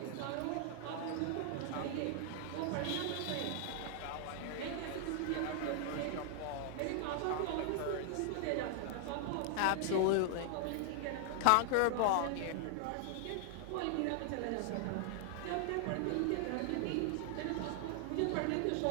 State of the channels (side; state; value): both; different; correlation 0.00